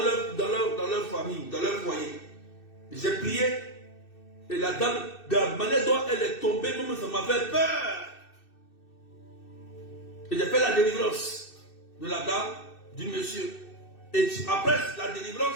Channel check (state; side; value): late; right; 2.6 ms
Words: leur famille, dans leur foyer. J'ai prié et la dame, de la manière dont elle est tombée, même ça m'a fait peur. Et j'ai fait la délivrance de la dame, du monsieur. Et après la